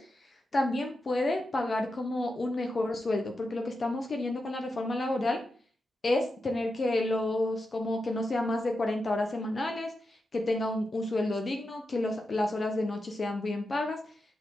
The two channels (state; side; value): normal; both; correlation 0.89